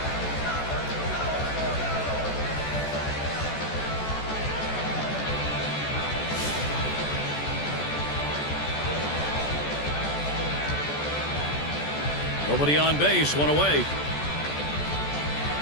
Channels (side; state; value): right; late; 14 ms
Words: Nobody on base. 1 away.